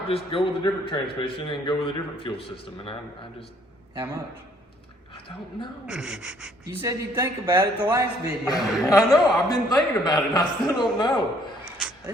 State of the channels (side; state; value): both; normal; correlation 0.63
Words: just go with a different transmission and go with a different fuel system. And I just, How much? I don't know. You said you'd think about it the last video. I know, I've been thinking about it and I still don't know.